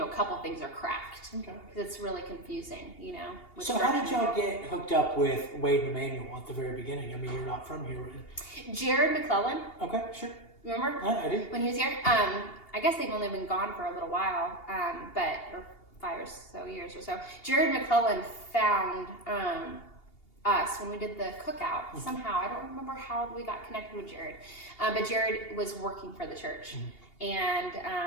a couple things are cracked. Okay. Because it's really confusing, you know. So how did y'all get hooked up with Wade and Emmanuel at the very beginning? I mean, you're not from here. Jared McClellan. Okay, sure. Remember? I do. When he was here? I guess they've only been gone for a little while, or 5 or so years or so. Jared McClellan found us when we did the cookout. Somehow, I don't remember how we got connected with Jared, but Jared was working for the church,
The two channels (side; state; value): right; late; 2.8 ms